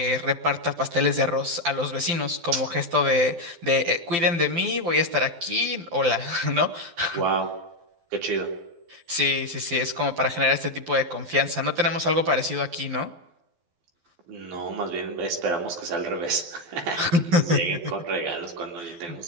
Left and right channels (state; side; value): late; left; 12 ms